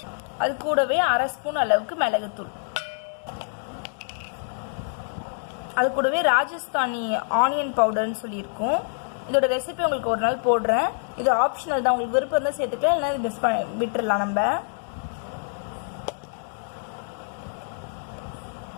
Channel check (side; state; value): right; silent; digital silence